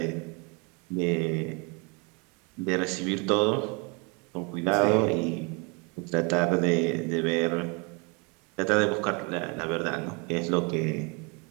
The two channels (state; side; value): quieter; left; 31.4 dB